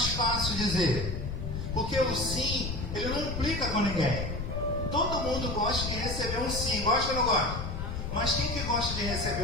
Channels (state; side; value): noise; left; rumble, 4 dB below the sound